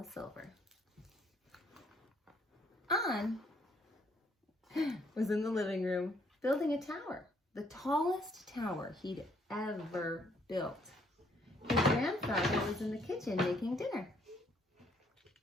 On was in the living room building a tower, the tallest tower he'd ever built. His grandfather was in the kitchen making dinner.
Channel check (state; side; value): normal; both; correlation 0.67